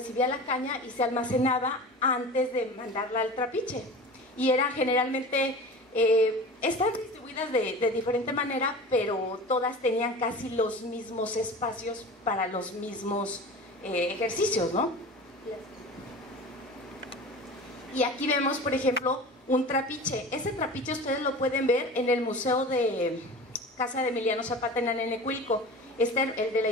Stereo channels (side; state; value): both; normal; correlation 0.35